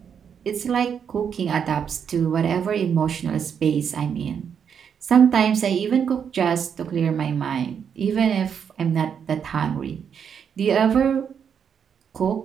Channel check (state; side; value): quieter; left; 7.5 dB